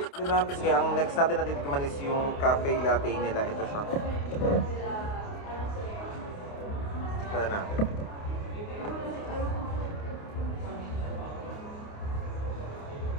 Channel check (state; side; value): late; right; 28 ms